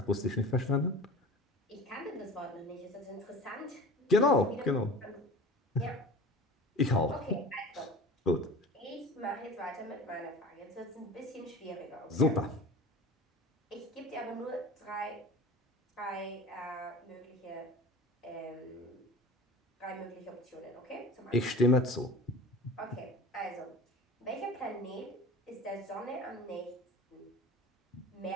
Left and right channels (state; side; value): normal; both; correlation 0.38